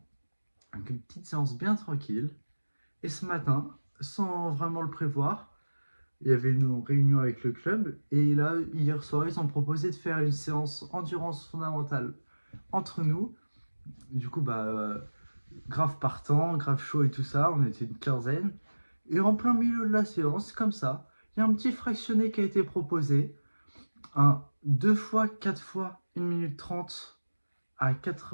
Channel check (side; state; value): both; inverted; correlation -1.00